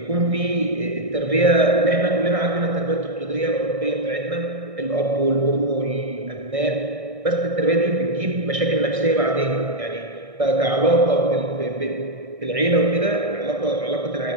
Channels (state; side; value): late; left; 1.6 ms